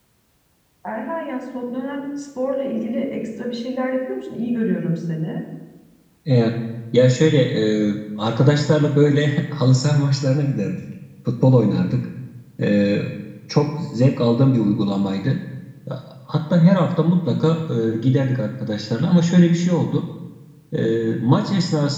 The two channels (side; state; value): both; identical; correlation 1.00